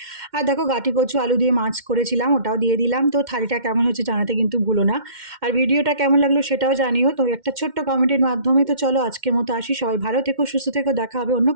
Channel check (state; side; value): late; left; 2.1 ms